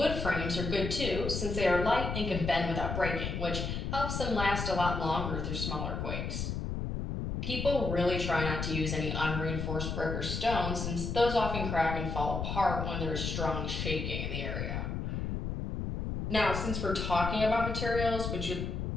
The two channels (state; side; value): noise; left; rumble, 3 dB below the sound